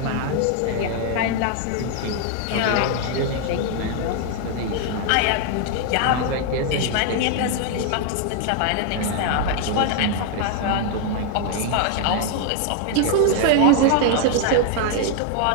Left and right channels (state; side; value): different; both; correlation 0.00